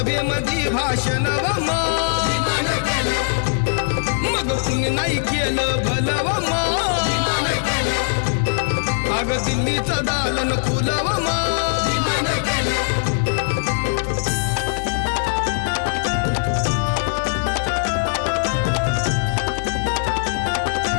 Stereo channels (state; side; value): silent; right; digital silence